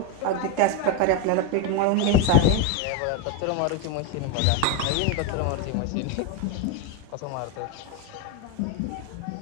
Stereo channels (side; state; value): both; different; correlation 0.02